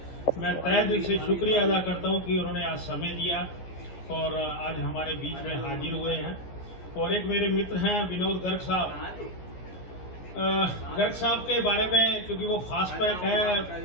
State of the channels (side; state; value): right; late; 14 ms